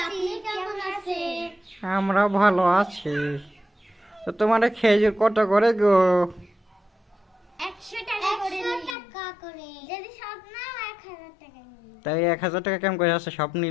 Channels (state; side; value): drops out; right; at 9.0 s